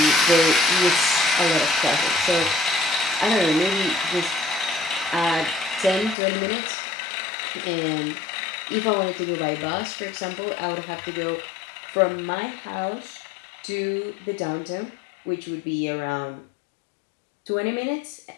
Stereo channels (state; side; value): drops out; right; at 6.2 s